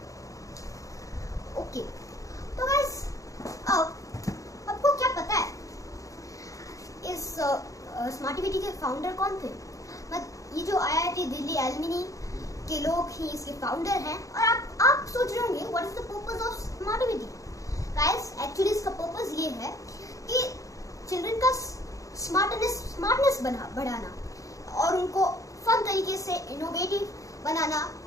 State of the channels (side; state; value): right; late; 0.16 ms